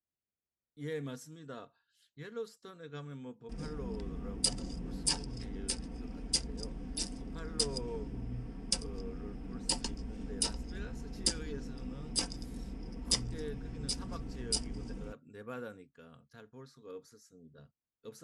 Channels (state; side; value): identical; both; correlation 1.00